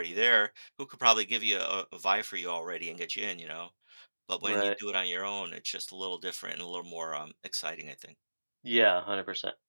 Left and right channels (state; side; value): inverted; both; correlation -1.00